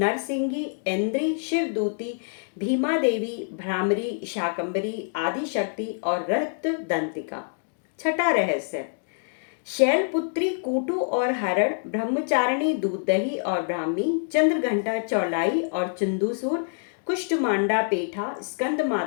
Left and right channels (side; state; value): right; silent; digital silence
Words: इंद्री, शिवदूती, भीमा देवी, भ्रामरी, शाकंभरी, आदिशक्ति और रक्त दंतिका। छठा रहस्य, शैलपुत्री कूटू और हरण, ब्रह्मचारिणी दूध दही और ब्राह्मी, चंद्रघंटा चौलाई और चंदूसूर, कुष्ठमांडा पेठा, स्कंद